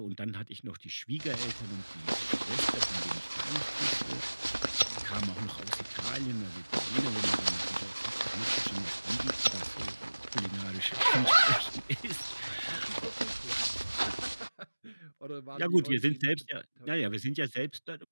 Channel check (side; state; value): both; inverted; correlation -1.00